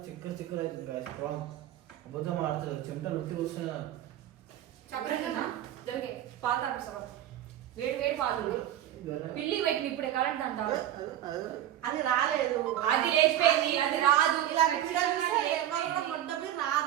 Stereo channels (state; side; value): quieter; left; 12.2 dB